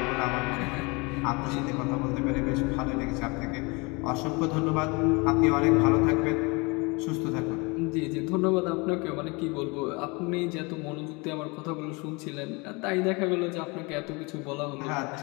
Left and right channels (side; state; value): right; quieter; 27.8 dB